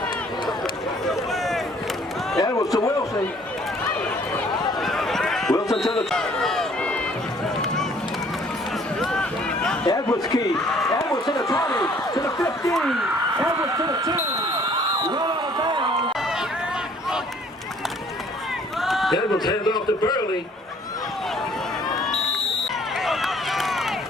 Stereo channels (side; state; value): both; normal; correlation 0.58